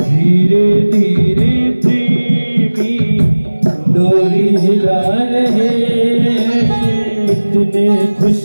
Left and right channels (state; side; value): inverted; both; correlation -1.00